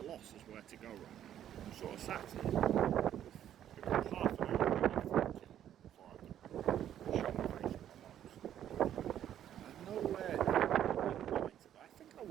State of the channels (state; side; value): quieter; left; 10.7 dB